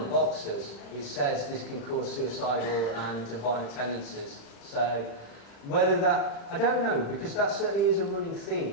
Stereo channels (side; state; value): right; late; 35 ms